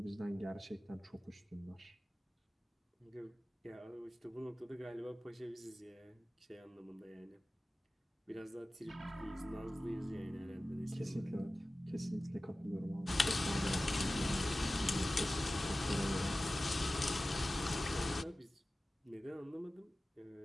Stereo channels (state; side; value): normal; both; correlation 0.96